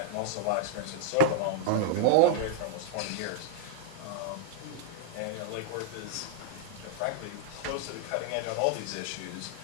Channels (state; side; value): different; both; correlation -0.01